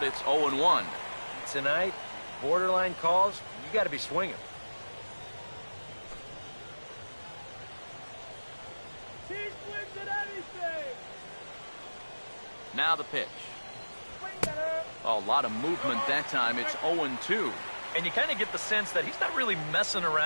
it's 0-1. Tonight, borderline calls, you got to be swinging. He swings at anything. Now the pitch. A lot of movement that time. It's 0-2. And you kind of get the sense that he's not really messing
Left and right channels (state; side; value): inverted; both; correlation -1.00